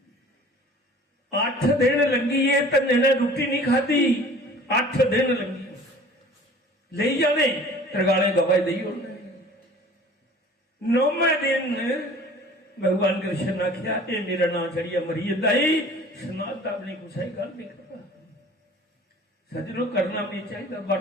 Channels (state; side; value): normal; both; correlation 0.47